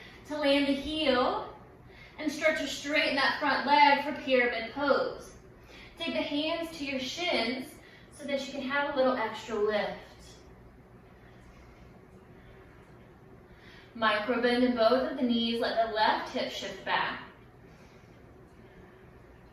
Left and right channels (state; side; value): identical; both; correlation 1.00